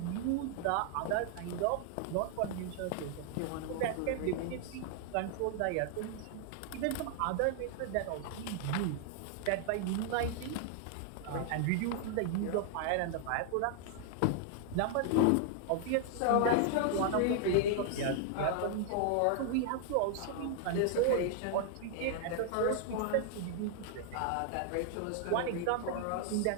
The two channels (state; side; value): different; both; correlation 0.00